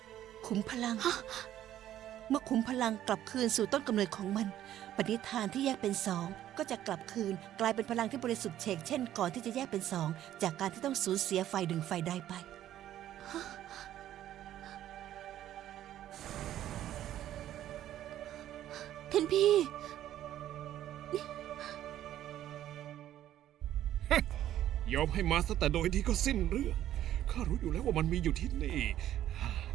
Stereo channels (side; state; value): left; quieter; 12.2 dB